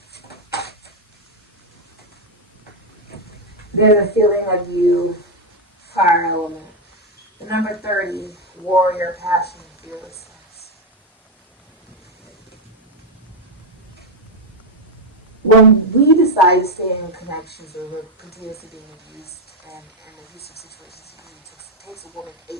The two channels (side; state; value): both; normal; correlation 0.03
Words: There's a feeling of you, fire element. The number 30, warrior, passion, and fearlessness. When we decide to stay in connections where we're continuously being abused and in abusive situations, it takes a woman 8